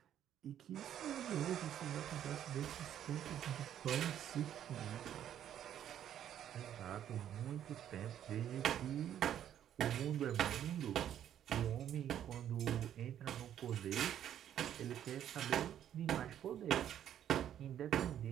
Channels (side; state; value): left; quieter; 10.4 dB